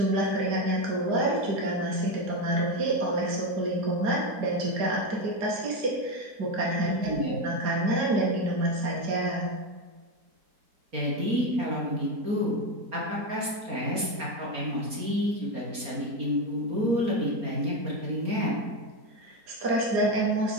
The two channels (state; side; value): late; left; 4.3 ms